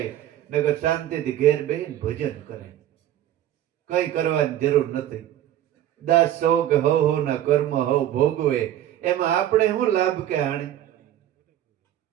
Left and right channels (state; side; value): quieter; left; 12.1 dB